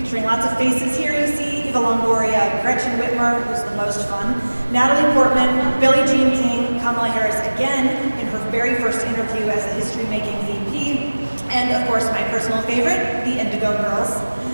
lots of faces here you see: Eva Longoria, Gretchen Wimmer, who's the most fun, Natalie Portman, Billie Jean King, Kamala Harris again in her very first interview as a history-making VP, and of course my personal favorite, the Indigo Girls.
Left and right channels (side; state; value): both; inverted; correlation -1.00